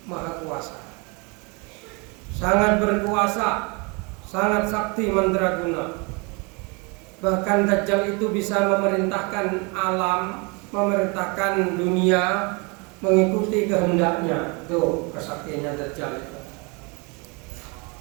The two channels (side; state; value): left; quieter; 30.5 dB